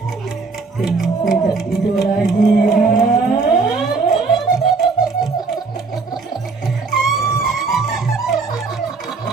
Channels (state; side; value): quieter; left; 4.3 dB